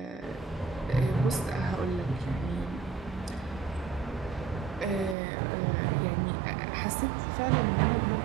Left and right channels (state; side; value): drops out; left; at 5.2 s